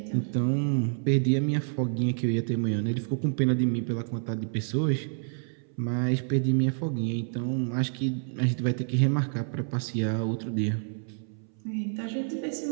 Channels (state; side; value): silent; left; 59 dB below the other